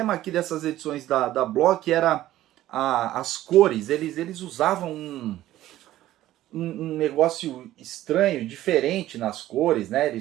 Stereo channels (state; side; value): quieter; left; 14.3 dB